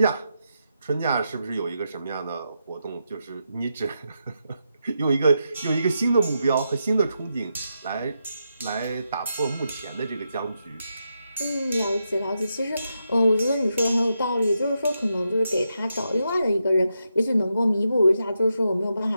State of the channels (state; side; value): inverted; both; correlation -0.84